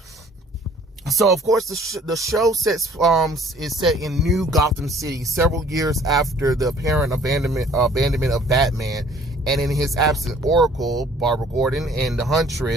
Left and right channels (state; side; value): normal; both; correlation 0.55